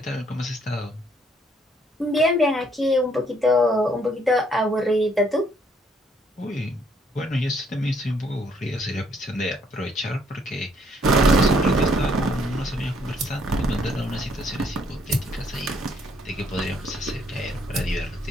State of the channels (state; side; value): normal; both; correlation 0.67